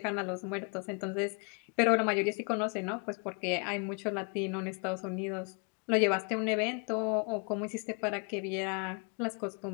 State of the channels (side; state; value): right; quieter; 36.8 dB